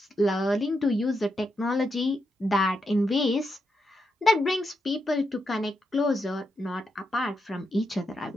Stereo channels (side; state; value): both; normal; correlation 0.83